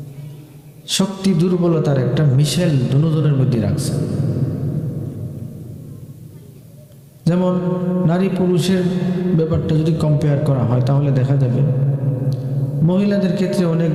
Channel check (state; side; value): identical; both; correlation 1.00